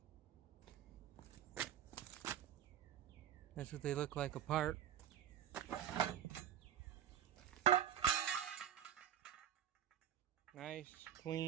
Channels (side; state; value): left; quieter; 10.4 dB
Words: That's what they look like apart. Nice,